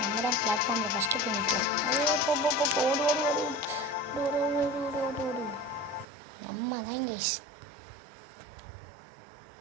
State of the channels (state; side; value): drops out; left; at 6.1 s